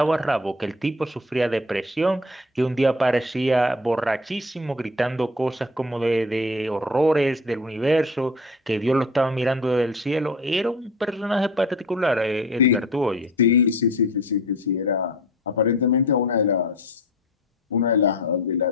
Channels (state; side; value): normal; both; correlation 0.40